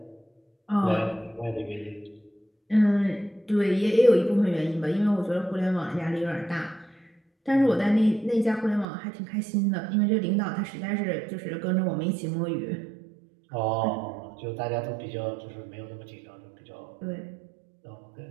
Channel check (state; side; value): drops out; left; at 8.8 s